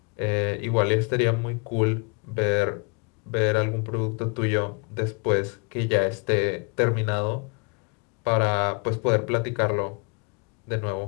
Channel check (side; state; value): right; quieter; 33.8 dB